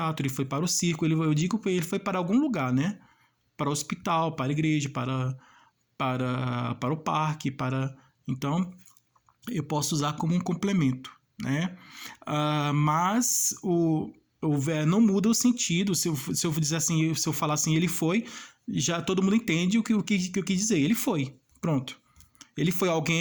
ele foi para o circo. Eu digo que ele foi para algum lugar, né? Para o hospital, para a igreja, para o parque, então eu posso usar como um complemento, né? Mas não muda o sentido. Se eu dizer assim, se eu falar assim, ele foi, já todo mundo entende o que eu quis dizer. Ele foi, pronto. Ele foi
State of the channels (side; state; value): both; identical; correlation 1.00